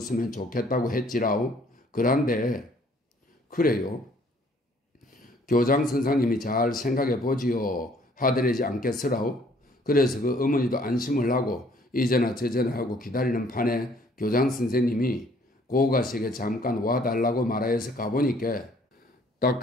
좋겠다고 했지라우. 그런데 그래요. 교장 선생님이 잘 생각해 보지요 하더래지 않겠으라우. 그래서 그 어머니도 안심을 하고 이제나 저제나 하고 기다리는 판에 교장 선생님이 고가식에 잠깐 와달라고 말하여서 가보니까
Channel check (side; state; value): both; normal; correlation 0.61